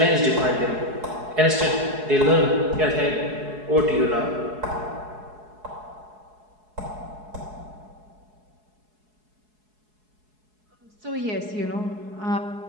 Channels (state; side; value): late; left; 4.7 ms